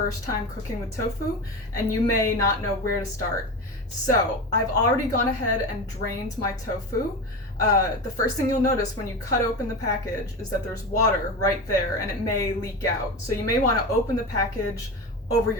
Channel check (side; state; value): both; normal; correlation 0.24